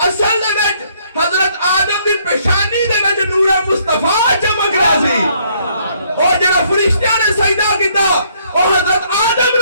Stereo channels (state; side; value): inverted; both; correlation -0.66